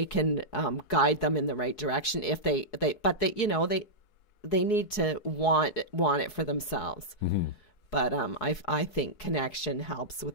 can guide them in the right direction if they need to want it for themselves. Mm-hmm. But I think connection helps with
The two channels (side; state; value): right; late; 4.7 ms